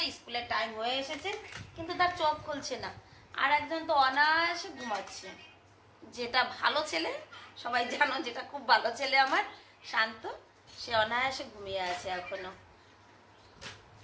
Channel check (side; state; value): both; identical; correlation 1.00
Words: স্কুলের টাইম হয়ে এসেছে, কিন্তু তার চোখ খুলছে না। আর একজন তো অনায়াসে ঘুমাচ্ছে। যেটা ভালো ছেলে, সবাই জানো যেটা খুব ভালো ছেলে আমার শান্ত, সে অনায়াসে ঘুমিয়ে আছে এখনো।